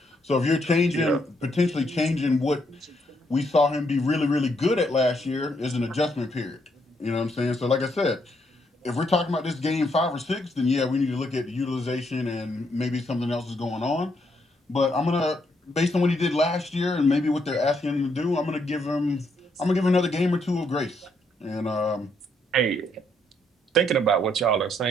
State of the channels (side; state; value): both; normal; correlation 0.74